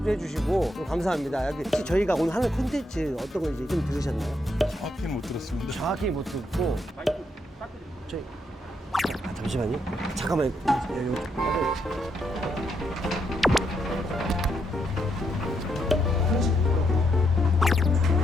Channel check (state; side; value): normal; both; correlation 0.78